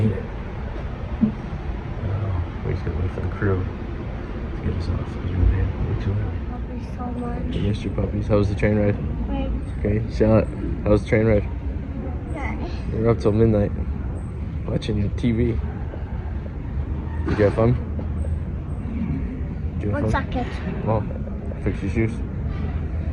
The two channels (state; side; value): identical; both; correlation 1.00